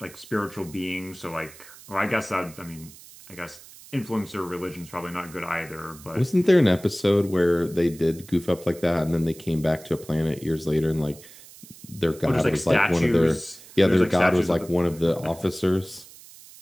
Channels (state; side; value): noise; right; hiss, 20 dB below the sound